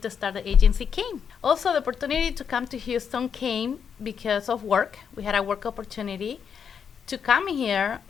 start the agency came. Also, the opportunity to come to Houston came because of work. We had a work opportunity to come here,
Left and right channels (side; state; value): right; quieter; 7.1 dB